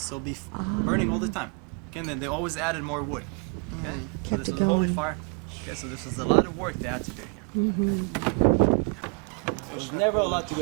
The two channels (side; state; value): left; quieter; 35.7 dB